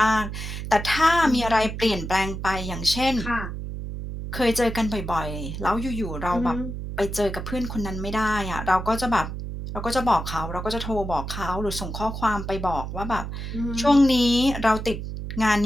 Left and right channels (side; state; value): right; noise; hum, 6 dB below the sound